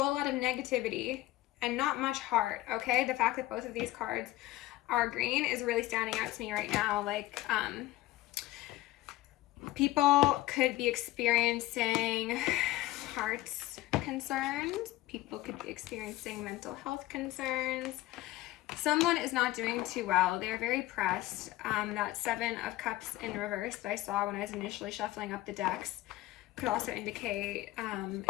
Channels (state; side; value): quieter; right; 16.7 dB